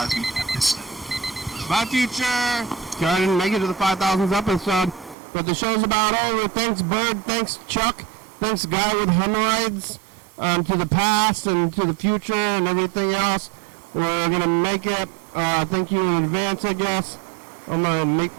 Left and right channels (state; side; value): drops out; left; at 5.2 s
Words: episode. Bye, future. Okay, I didn't make it to the 5,000th episode, but the show's about over. Thanks, Bird. Thanks, Chuck. Thanks, Guy with Hemorrhoids. To the past and to the future and everything else. We're gonna make it. Thank you in advance, I guess. I'm gonna make